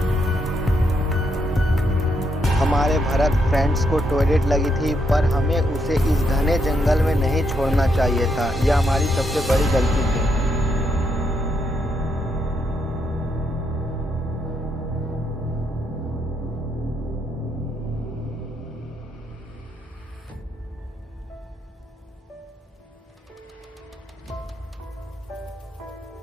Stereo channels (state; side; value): normal; both; correlation 0.78